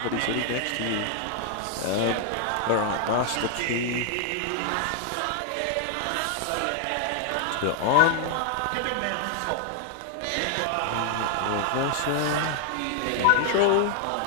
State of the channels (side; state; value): both; different; correlation 0.00